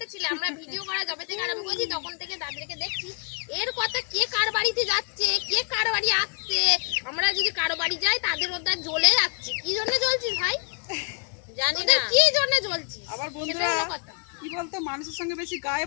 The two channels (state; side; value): quieter; right; 39.7 dB